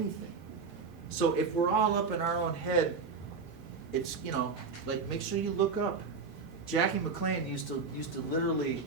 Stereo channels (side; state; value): left; quieter; 4.8 dB